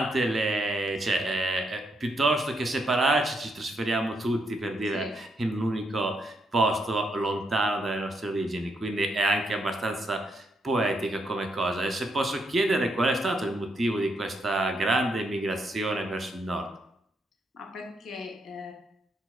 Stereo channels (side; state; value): both; normal; correlation 0.78